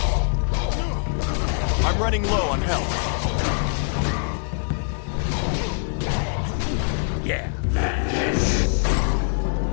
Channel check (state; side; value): silent; right; digital silence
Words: I'm running low on health. Yeah.